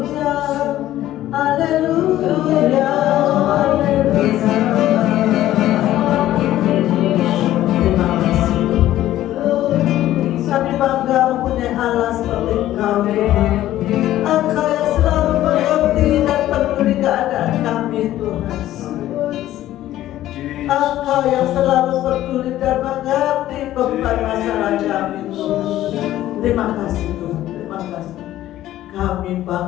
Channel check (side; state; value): right; quieter; 13.8 dB